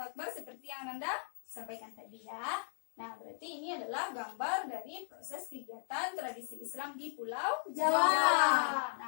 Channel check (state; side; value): silent; right; 53 dB below the other